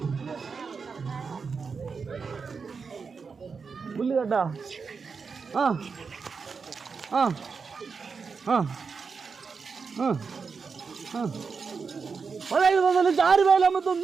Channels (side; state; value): left; quieter; 5.3 dB